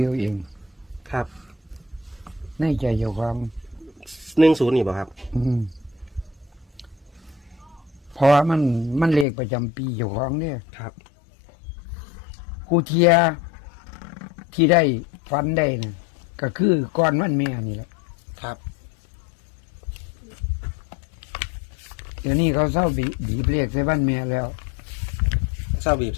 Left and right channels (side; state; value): right; drops out; at 9.2 s